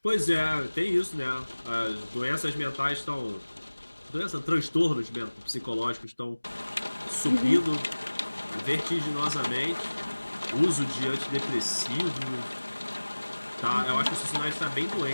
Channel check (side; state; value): both; inverted; correlation -1.00